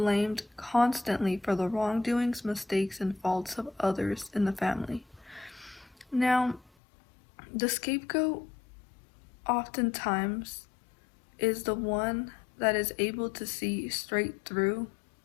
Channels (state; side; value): drops out; right; at 6.7 s